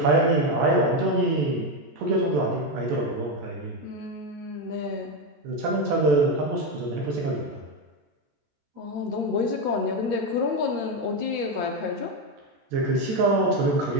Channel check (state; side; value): late; left; 14 ms